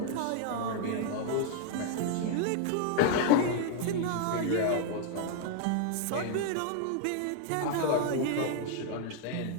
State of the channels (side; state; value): both; different; correlation 0.00